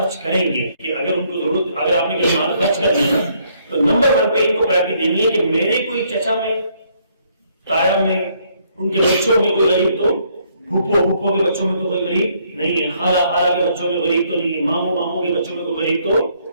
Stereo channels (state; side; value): inverted; both; correlation -0.69